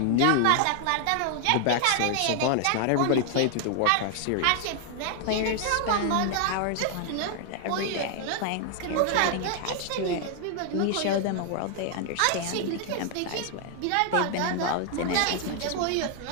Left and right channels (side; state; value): both; different; correlation 0.00